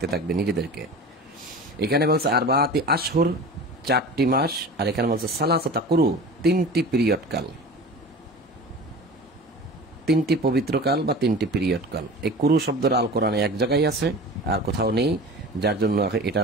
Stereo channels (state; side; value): normal; both; correlation 0.36